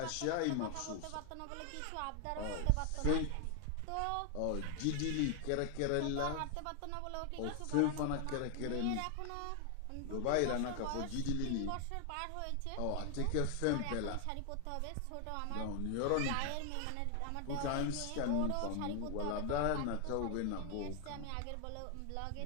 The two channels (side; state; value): both; different; correlation 0.00